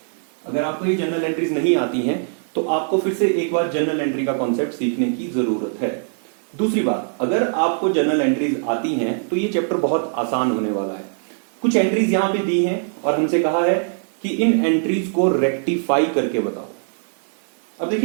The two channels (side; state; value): left; silent; digital silence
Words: अगर आपको ये जनरल एंट्रीज नहीं आती हैं तो आपको फिर से एक बार जनरल एंट्री का कॉन्सेप्ट सीखने की जरूरत है। दूसरी बात, अगर आपको जनरल एंट्रीज आती हैं तो ये चैप्टर बहुत आसान होने वाला है। कुछ एंट्रीज यहां पे दी हैं और हमसे कहा है कि इन एंट्रीज को रेक्टिफाई करके बताओ। अब